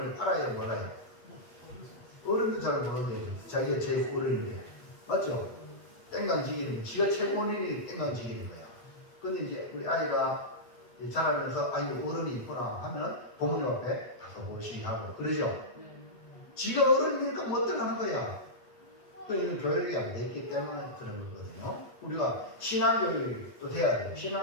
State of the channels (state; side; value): late; right; 8.3 ms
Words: 알아야 몰라요. 어른도 잘 모르는데 자기가 제일 어른인데 맞죠? 땡강지기는 지가 최고인 일이 땡강지기는 거야. 근데 이제 우리 아이가 자라면서 아이고 어른이 있구나 하면 부모님 앞에 가서 모시하고 그러죠. 지가 어른이니까 뭐 어떡하는 거야. 그러니까 교육이 안 됐기 때문에 그런 거거든요. 우리가 신앙교육도 돼야 돼요.